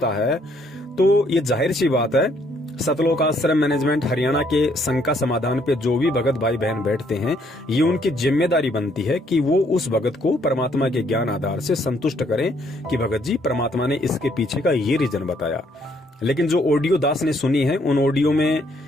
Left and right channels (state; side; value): normal; both; correlation 0.68